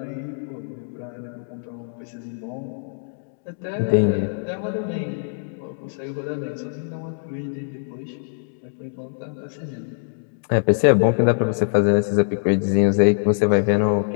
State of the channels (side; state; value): right; silent; digital silence